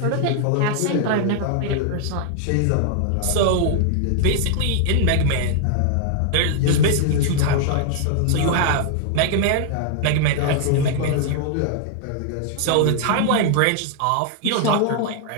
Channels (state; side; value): different; both; correlation -0.01